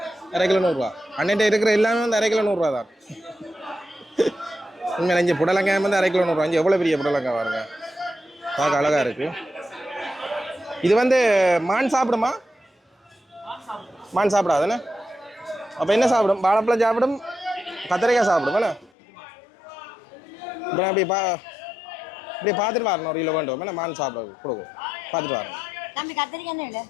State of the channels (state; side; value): drops out; right; at 18.9 s